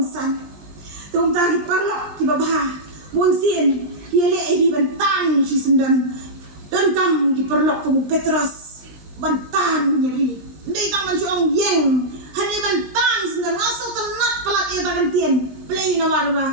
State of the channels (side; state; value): left; late; 19 ms